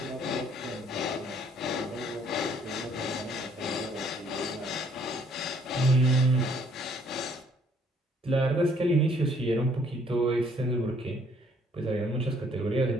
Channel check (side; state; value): both; normal; correlation 0.63